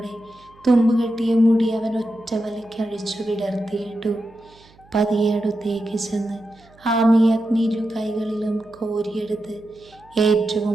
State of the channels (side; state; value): right; noise; hum, 28 dB below the sound